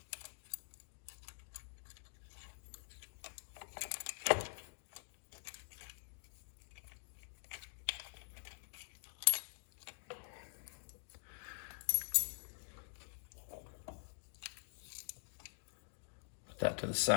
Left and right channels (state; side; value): silent; right; digital silence